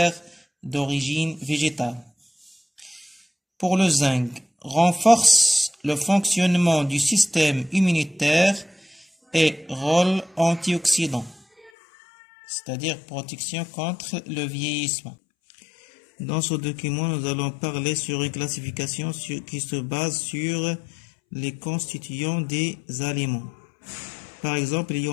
d'origine végétale. Pour le zinc, renforce le fonctionnement du système immunitaire et rôle antioxydant, c'est-à-dire protection contre le vieillissement. Dans ce document, nous allons parler sur une classification qui se base sur les constituants des aliments. Par exemple, il y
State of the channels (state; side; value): drops out; right; at 11.7 s